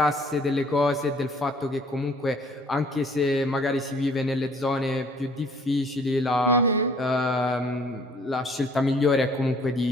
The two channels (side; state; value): both; normal; correlation 0.57